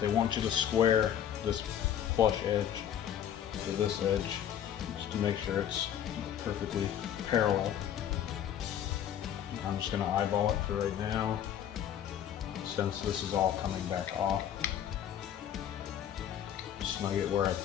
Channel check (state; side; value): quieter; right; 10.0 dB